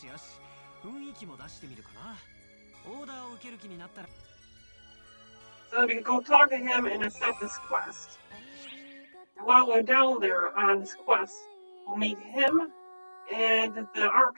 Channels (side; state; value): both; inverted; correlation -1.00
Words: よし、雰囲気も出してみるかな。オーダーを受ける気になったら。 So we can go talk to him and accept this quest. While we're down there on this quest, we'll meet him and the Arc